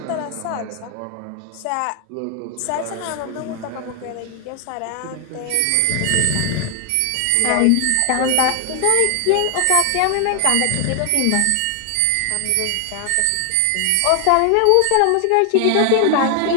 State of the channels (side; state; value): both; different; correlation 0.00